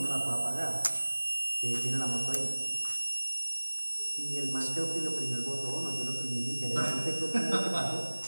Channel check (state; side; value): inverted; both; correlation -1.00